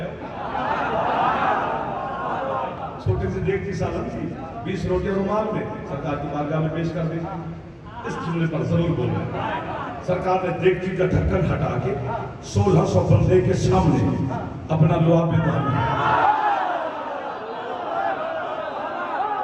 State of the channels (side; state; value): both; identical; correlation 1.00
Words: छोटी सी देख की सालन थी, 20 रोटियां रुमाल में सरकार की बारगाह में पेश कर दी। इस जुमले पर जरूर बोलना, सरकार ने देगची का ढक्कन हटा के 1600 बंदे के सामने अपना लुआब में